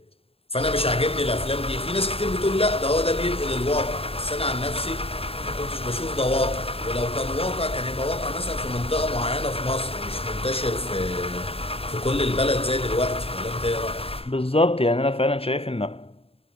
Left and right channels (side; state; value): right; late; 0.28 ms